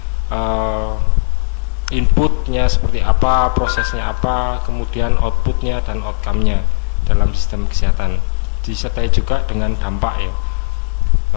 inputnya seperti apa, prosesnya apa, kemudian outputnya dan outcome-nya dalam sistem kesehatan, disertai juga dengan dampak ya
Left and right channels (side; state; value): right; silent; 65 dB below the other